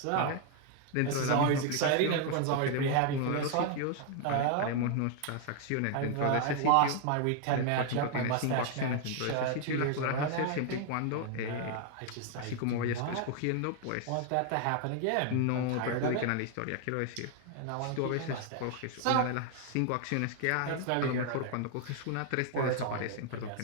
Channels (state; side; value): different; both; correlation 0.00